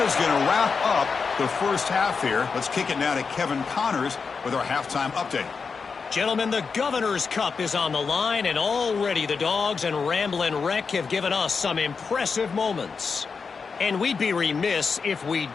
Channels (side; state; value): right; quieter; 5.2 dB